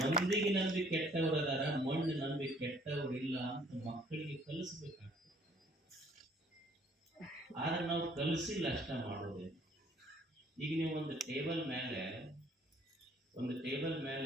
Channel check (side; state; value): both; normal; correlation 0.60